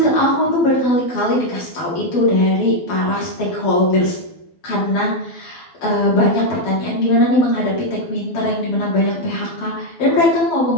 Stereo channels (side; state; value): right; late; 12 ms